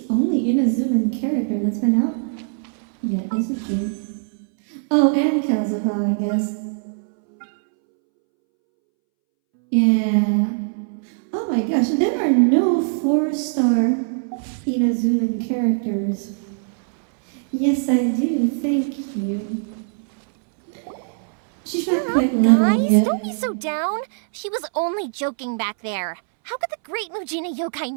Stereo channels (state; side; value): silent; left; 65 dB below the other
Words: only Inazuman character that's been out yet, isn't she? Oh, and Kazuha, I guess. Yeah. Oh my gosh, there are no 4-star Inazuman characters. Yes, I do. Thank you. She's not quite level Guys, yet. don't be so down. She was only joking back there. How could the Great Mujina Yokai